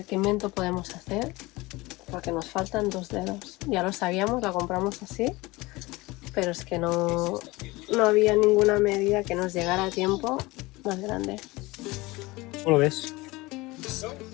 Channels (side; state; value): right; quieter; 21.8 dB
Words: qué invento podemos hacer. Porque nos faltan 2 dedos. Ya lo sabíamos, la compramos así. Pero es que no había ninguna medida que nos llegara a tiempo más grande. ¿Cómo lo ves?